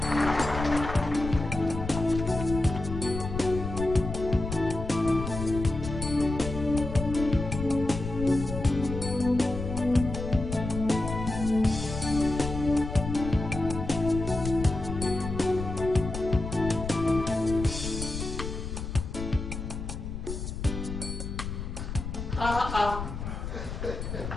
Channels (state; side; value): noise; left; rumble, 6 dB below the sound